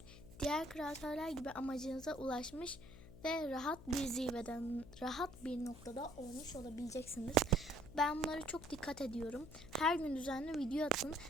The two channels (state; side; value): noise; left; hum, 16 dB below the sound